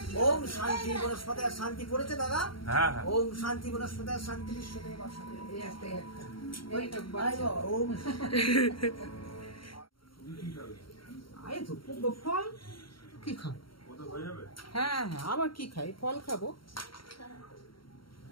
ओम शांति वनस्पतयः शांति করেছে দাদা হ্যাঁ হ্যাঁ ओम शांति वनस्पतयः शांति विश्वदेवा शांति ओम আয় তো ফল কি খাও? হ্যাঁ হ্যাঁ, আবার কি খাই? ফল খাবো।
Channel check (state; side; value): late; right; 0.74 ms